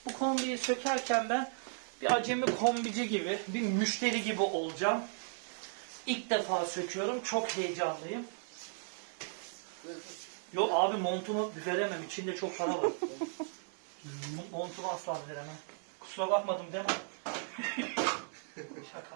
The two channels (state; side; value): silent; left; digital silence